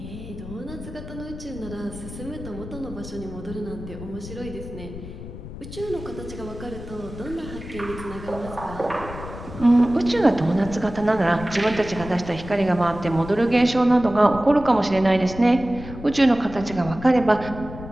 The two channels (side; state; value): left; noise; rumble, 12 dB below the sound